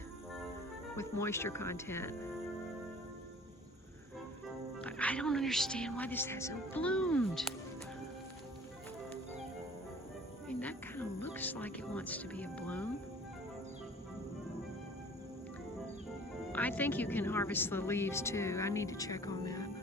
with moisture content. I don't understand why this hasn't bloomed. I mean, that kind of looks like it wants to be a bloom. I think you can harvest the leaves too. I need to check on that.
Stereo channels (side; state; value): both; normal; correlation 0.49